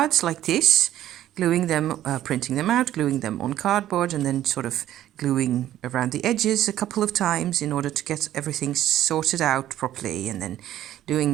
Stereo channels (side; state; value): left; quieter; 12.7 dB